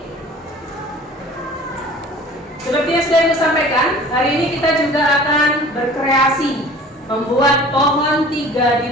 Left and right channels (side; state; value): both; normal; correlation 0.45